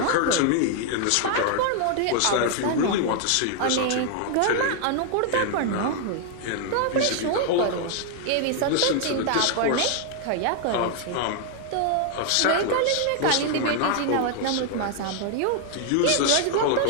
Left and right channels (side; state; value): both; different; correlation 0.00